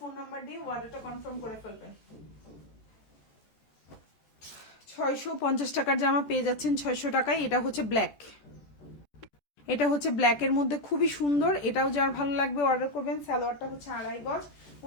নাম্বার দিয়ে অর্ডারটা কনফার্ম করে ফেলবেন। 650 টাকার জামা পেয়ে যাচ্ছেন 600 টাকায়। এটা হচ্ছে ব্ল্যাক, এটা হচ্ছে ব্ল্যাকের মধ্যে খুবই সুন্দর। এটাও যার ভালো লাগবে অর্ডার করবেন। সালোয়ারটা হচ্ছে 2.5 গজ,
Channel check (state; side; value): late; right; 14 ms